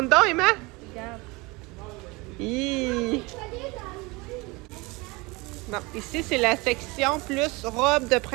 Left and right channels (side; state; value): left; quieter; 24.8 dB